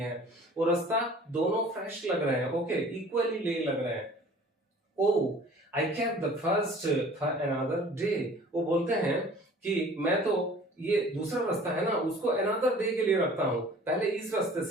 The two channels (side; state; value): both; normal; correlation 0.48